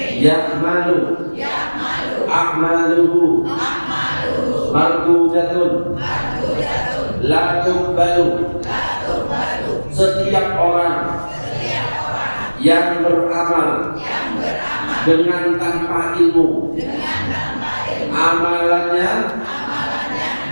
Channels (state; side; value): inverted; both; correlation -1.00